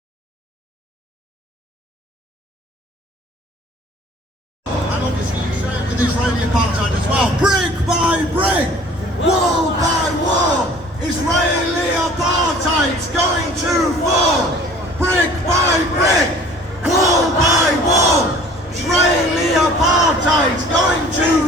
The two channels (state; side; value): normal; both; correlation 0.49